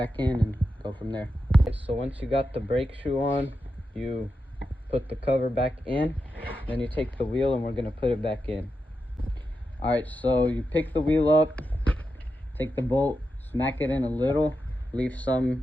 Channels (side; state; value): both; normal; correlation 0.88